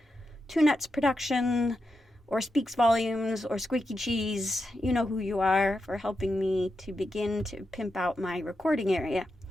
Two Nuts Production, or Speaks Volumes, or Squeaky Cheese, you know who you are, for helping me to begin to pimp out my recording area.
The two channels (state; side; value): normal; both; correlation 0.87